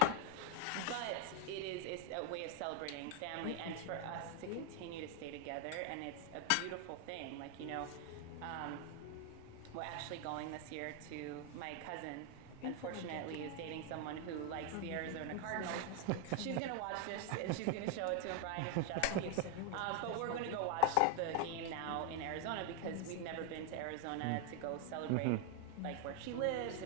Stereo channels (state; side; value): different; both; correlation 0.00